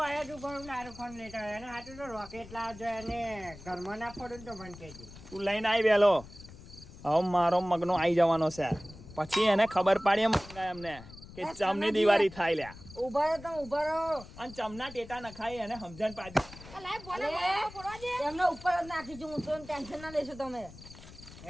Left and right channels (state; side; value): noise; left; rumble, 17 dB below the sound